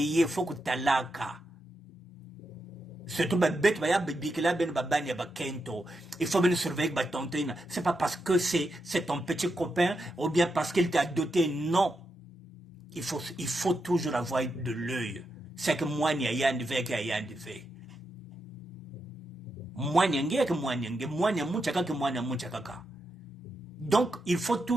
il faut que talaka. Surtout, il faut bien surveiller tonton. C'est pas parce que c'est ton petit copain ou bien parce qu'il t'a doté. Non. Il faut toujours avoir de l'œil. C'est que moi, il y a un devait qu'il y a un devait. Donc, il faut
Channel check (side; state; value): both; normal; correlation 0.85